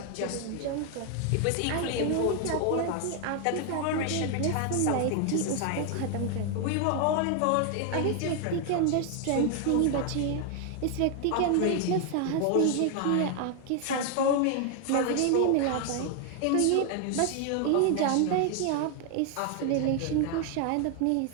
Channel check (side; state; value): both; different; correlation 0.00